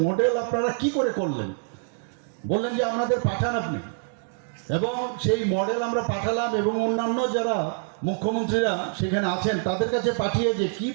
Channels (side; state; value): left; silent; digital silence